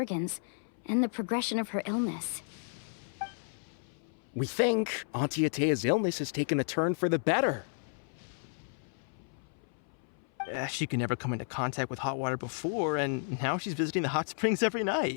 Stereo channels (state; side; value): silent; right; 56 dB below the other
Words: and the progression of her illness. We think Auntie Atea's illness has taken a turn for the better. She could never come into contact with hot water before, and now she's visiting the hot springs every